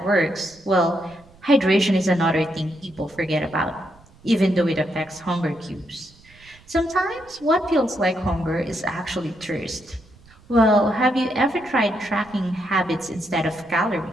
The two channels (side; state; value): right; noise; rumble, 27 dB below the sound